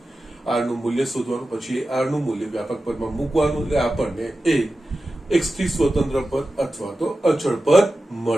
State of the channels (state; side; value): normal; both; correlation 0.93